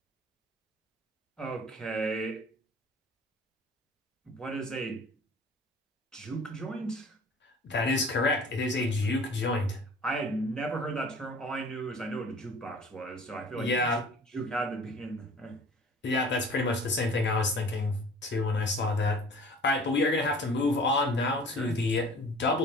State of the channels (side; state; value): both; normal; correlation 0.46